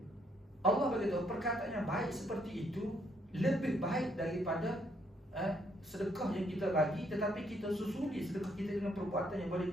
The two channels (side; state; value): both; normal; correlation 0.71